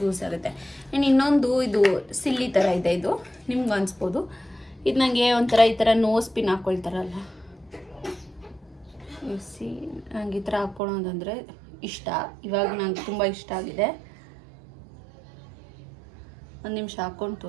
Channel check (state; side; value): drops out; left; at 10.8 s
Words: ಆಗುತ್ತೆ. ಆ್ಯಂಡ್ ಇನ್ನೊಂದು ಇದು ಸಿಲ್ಲಿ ಥರ ಇದೆ, ಇದು ನಿಮ್ಗೆ ಅನಿಸ್ಬೋದು. ಇದು ನನಗೆ ಒಂಥರ ಈ ಥರ ನೋಸ್ ಪಿನ್ ಹಾಕ್ಕೊಳ್ತಾರಲ್ಲ, ನಂಗೆ ಈ ಥರ ಹಾಕ್ಕೊಳ್ಳೋದಂದರೆ ಇಷ್ಟ. ಇವಾಗ ನಂಗೆ ತುಂಬ ಇಷ್ಟ ಆಗಿದೆ. ಒಂದು ನಿಮಿಷ ಹಾಕ್ಕೊಂಡು